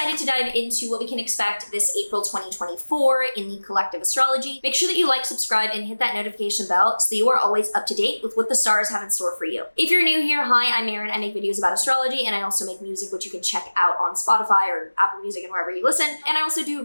to dive into what we can expect this April 2024 in the collective astrology, make sure that you like, subscribe, and hit that notification bell so that you are always up to date with what the stars have in store for you. If you're new here, hi, I'm Maren. I make videos about astrology, and I also make music, which you can check out on Spotify or Apple Music and wherever you listen. And I also do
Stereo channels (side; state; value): both; inverted; correlation -1.00